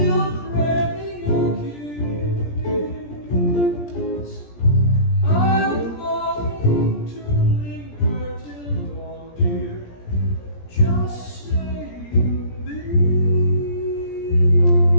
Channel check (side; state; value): right; late; 17 ms